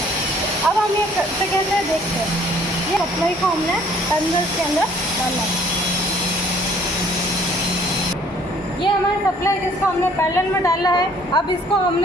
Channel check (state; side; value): normal; both; correlation 0.58